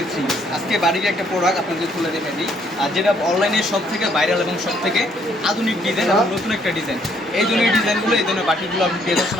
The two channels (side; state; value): both; normal; correlation 0.67